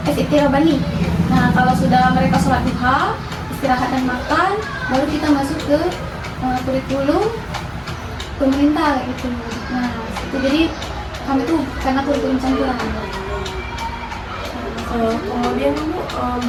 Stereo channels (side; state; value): both; identical; correlation 1.00